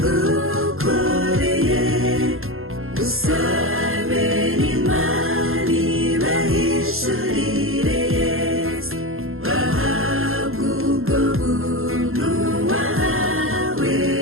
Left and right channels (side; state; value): left; late; 0.61 ms